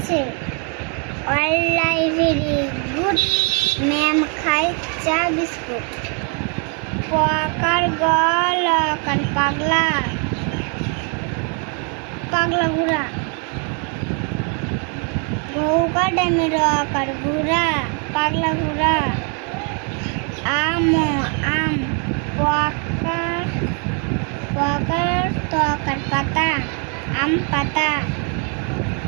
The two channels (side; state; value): left; quieter; 38.4 dB